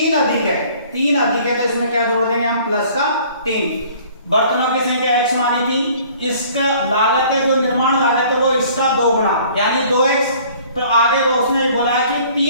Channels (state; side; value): inverted; both; correlation -0.53